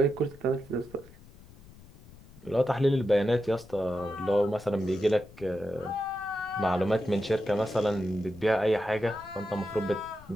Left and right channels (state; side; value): noise; left; rumble, 22 dB below the sound